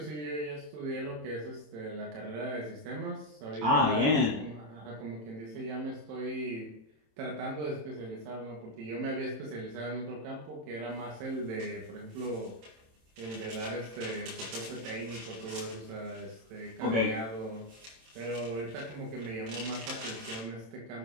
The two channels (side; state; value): left; late; 27 ms